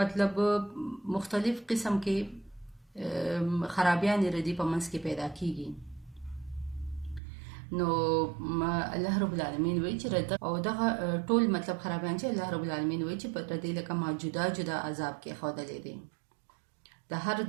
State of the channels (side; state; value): left; drops out; at 7.2 s